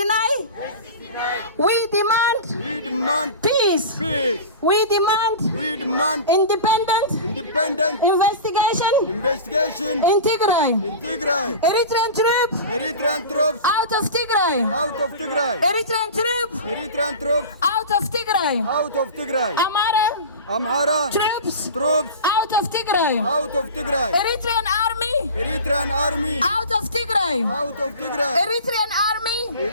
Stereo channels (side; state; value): both; inverted; correlation -0.32